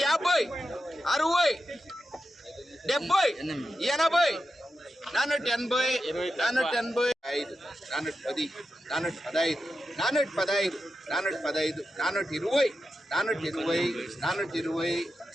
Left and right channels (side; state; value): both; normal; correlation 0.90